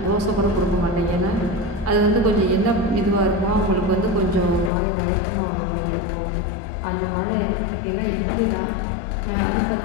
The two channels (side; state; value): right; drops out; at 4.7 s